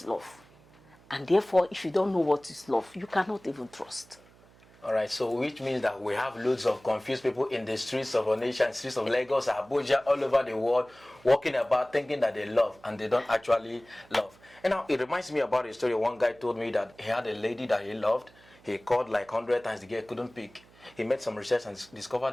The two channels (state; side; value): noise; right; hum, 27 dB below the sound